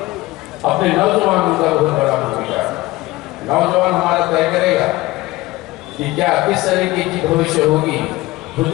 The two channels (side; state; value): right; quieter; 19.3 dB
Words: अपने नौजवानों का बहुत बड़ा भूमिका है। नौजवान हमारा तय करेगा कि क्या किस तरीके की भविष्य होगी खुद